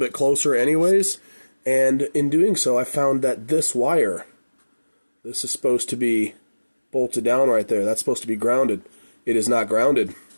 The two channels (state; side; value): inverted; both; correlation -1.00